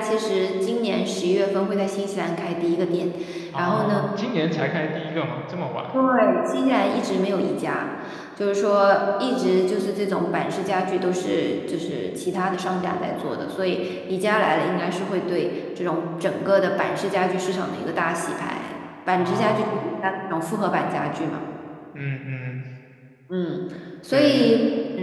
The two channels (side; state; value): both; identical; correlation 1.00